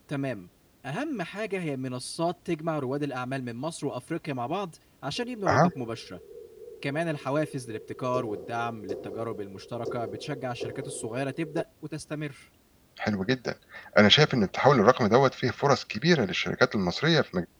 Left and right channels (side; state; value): both; identical; correlation 1.00